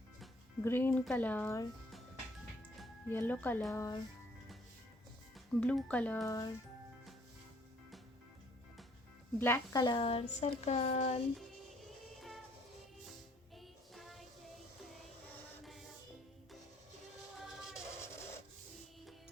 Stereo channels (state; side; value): normal; both; correlation 0.61